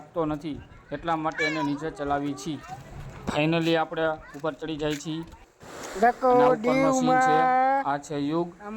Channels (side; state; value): both; identical; correlation 1.00